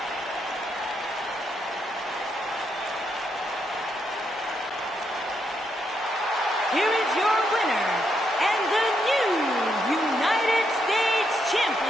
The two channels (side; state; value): both; normal; correlation 0.79